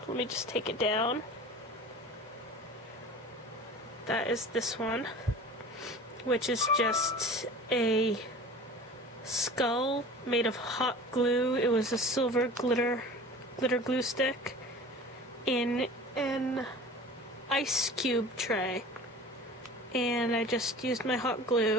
let me just take it down. That is this one, which is just a skull made of hot glue. It was a silver glitter glue stick in an ice cube tray, and I just used my hot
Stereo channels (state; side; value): normal; both; correlation 0.40